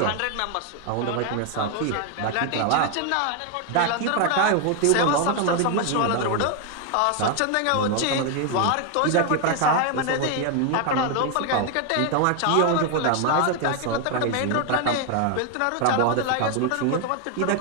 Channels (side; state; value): both; different; correlation 0.00